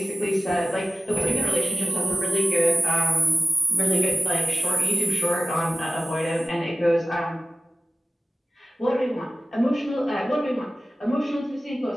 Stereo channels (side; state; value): both; normal; correlation 0.94